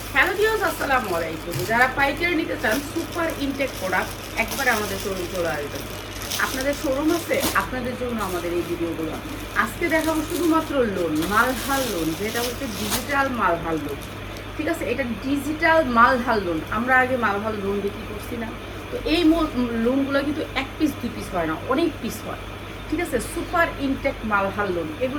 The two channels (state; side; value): identical; both; correlation 1.00